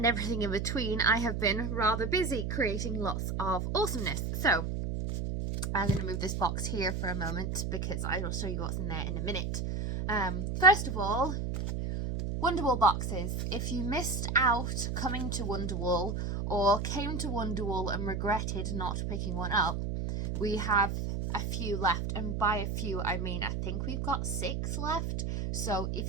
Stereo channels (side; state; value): right; noise; hum, 2 dB below the sound